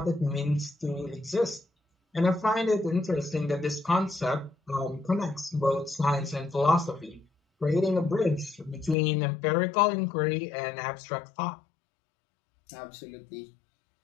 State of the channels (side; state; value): right; drops out; at 9.0 s